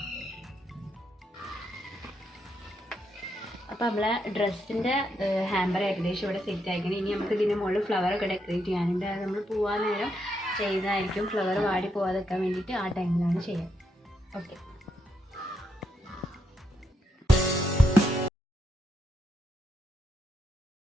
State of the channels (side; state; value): both; normal; correlation 0.80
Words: അപ്പം നമ്മളെ ഡ്രസ്സിൻ്റെ ഹാമ്പർ ഏകദേശം ഇവിടെ സെറ്റ് ആയിരിക്കണം. ഇനി നമുക്ക് ഇതിൻ്റെ മുകളിൽ ഫ്ലവറൊക്കെ ഡെക്കറേറ്റ് ചെയ്യാനുണ്ട്. അത് നമ്മൾ പോകാൻ നേരം ചെയ്യുന്നതായിരിക്കും. ഫ്ലവർ വാടി പോകാതിരിക്കാൻ വേണ്ടിയിട്ട് ആ ടൈമിലാണ് ചെയ്യുക. ഓക്കെ.